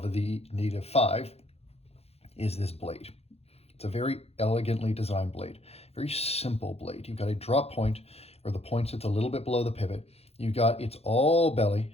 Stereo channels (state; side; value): late; right; 0.29 ms